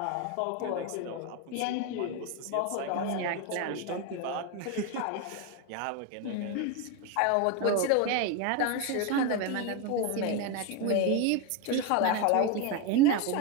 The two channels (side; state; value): both; different; correlation 0.02